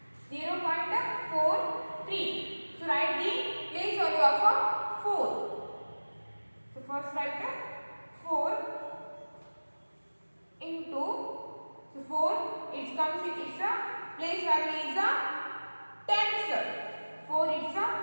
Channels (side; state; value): both; inverted; correlation -1.00